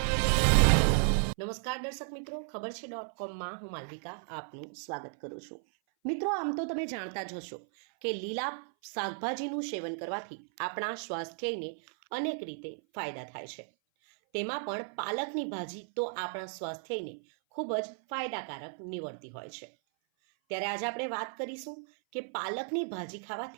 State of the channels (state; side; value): silent; left; 55 dB below the other